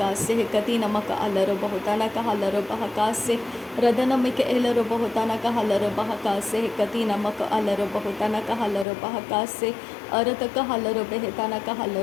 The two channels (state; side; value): drops out; right; at 8.8 s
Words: Kati namaka alaro bahutana kahalaro bahakase. Radanamika elaro bahutana kahalaro bahakase. Kati namaka alaro bahutana kahalaro bahakase. Arataka halaro behetana